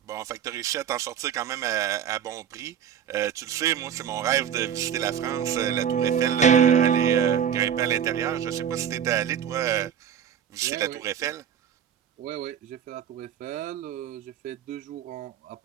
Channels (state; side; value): quieter; left; 8.8 dB